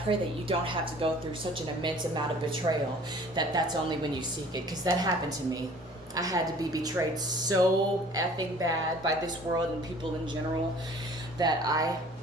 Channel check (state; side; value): normal; both; correlation 0.50